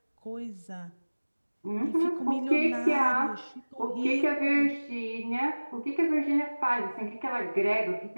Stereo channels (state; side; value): inverted; both; correlation -1.00